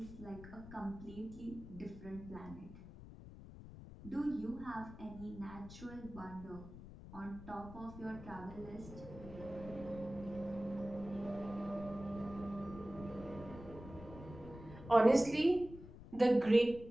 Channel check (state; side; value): noise; left; rumble, 14 dB below the sound